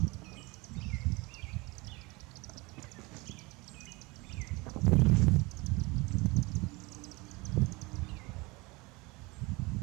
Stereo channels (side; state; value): left; quieter; 24.8 dB